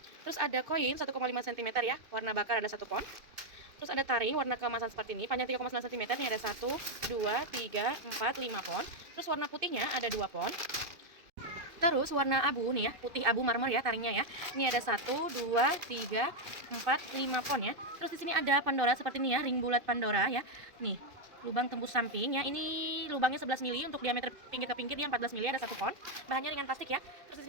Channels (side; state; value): left; late; 2.5 ms